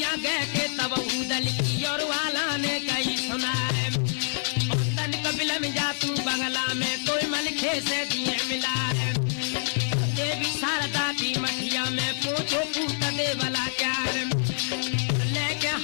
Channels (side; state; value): right; silent; 57 dB below the other